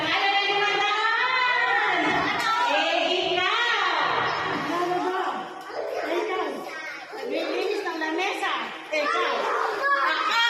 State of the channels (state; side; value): identical; both; correlation 1.00